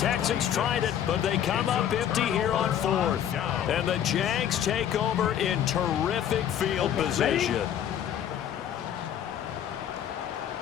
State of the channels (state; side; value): quieter; right; 10.0 dB